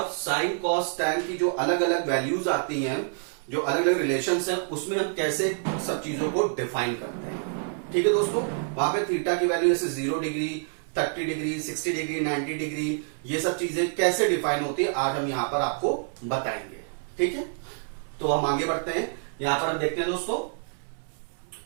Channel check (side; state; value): left; silent; 60 dB below the other